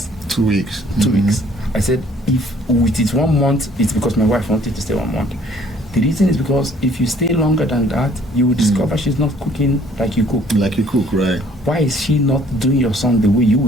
2 weeks. 2 weeks. I said, if it is 1 month, it's because my wife wanted to stay 1 month. The reason is because if you stay longer than that, you will discover she's not cooking like you cook. Like you cook, right? Why is she not doing your son the way you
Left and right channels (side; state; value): both; normal; correlation 0.58